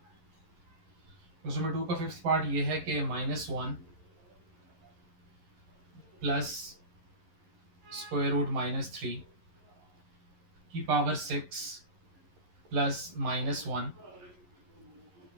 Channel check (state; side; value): late; left; 11 ms